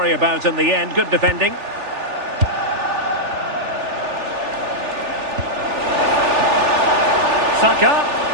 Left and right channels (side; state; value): left; late; 3.4 ms